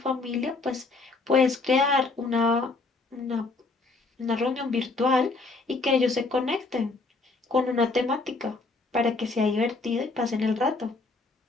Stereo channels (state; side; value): quieter; right; 3.7 dB